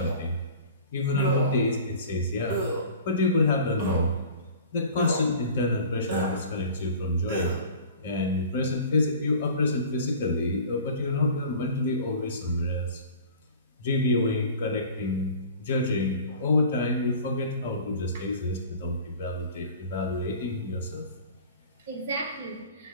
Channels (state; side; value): inverted; both; correlation -0.43